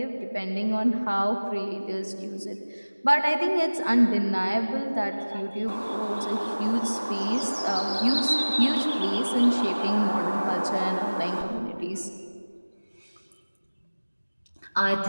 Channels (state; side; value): inverted; both; correlation -1.00